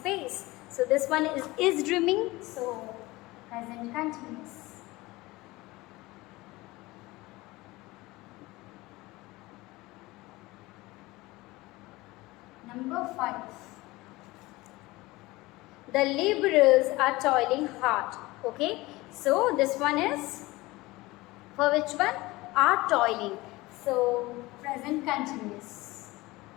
So this one is dreaming, so present continuous. Number 5. The laborers are toiling hard. Okay, so this one is for which one? Are toiling. So present continuous.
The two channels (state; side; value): quieter; right; 20.6 dB